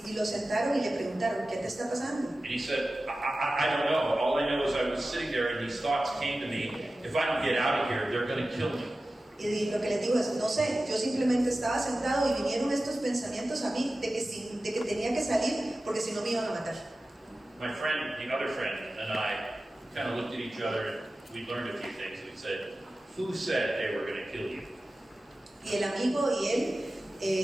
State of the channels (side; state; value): both; normal; correlation 0.95